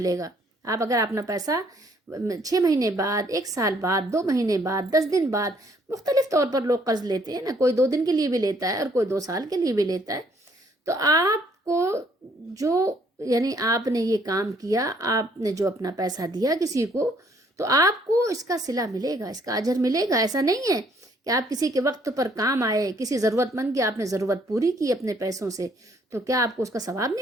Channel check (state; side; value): normal; both; correlation 0.65